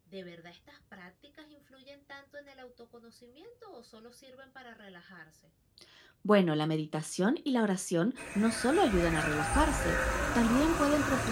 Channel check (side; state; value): both; identical; correlation 1.00